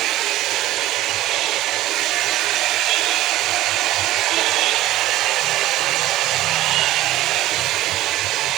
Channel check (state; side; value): quieter; left; 15.3 dB